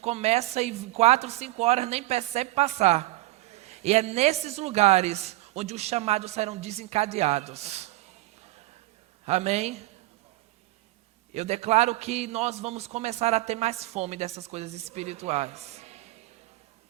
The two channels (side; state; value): left; quieter; 18.7 dB